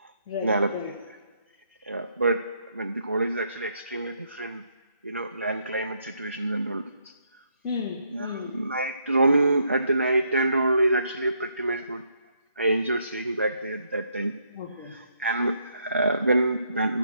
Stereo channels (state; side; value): inverted; both; correlation -0.74